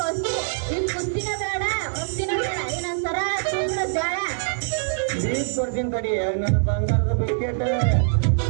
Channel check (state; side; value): silent; left; digital silence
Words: ಈ ಕುಸ್ತಿನ ಬೇಡ ಕುಸ್ತಿನ ಬೇಡ ಇನ್ನೊಂದ್ ಸರ ತುಂಬ್ರ ಜಾಳ ಬೀಸ್ ಕೊಡ್ತೀನಿ ತಡಿ ನನ್ನ ಬಂಗಾರದ ಬಿಸ್ಕೆಟ್